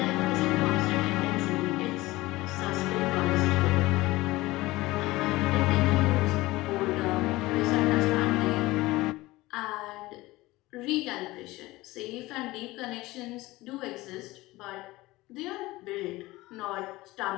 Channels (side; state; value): right; quieter; 19.4 dB